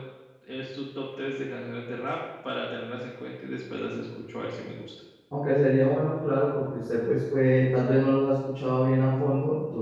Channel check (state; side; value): identical; both; correlation 1.00